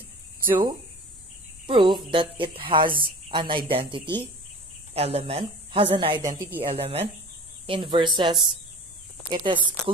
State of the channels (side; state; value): both; normal; correlation 0.40